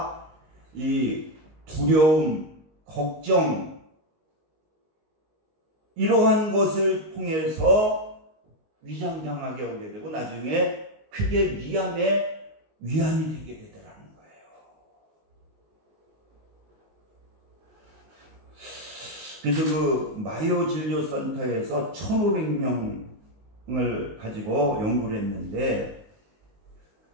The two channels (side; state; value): left; late; 19 ms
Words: 이 두려움, 걱정, 이러한 것을 통해서 위장장애가 오게 되고 나중에 크게 위암이 되게 되더라는 거예요. 그래서 그 마요 진료센터에서 1,500명을 가지고 연구를 했는데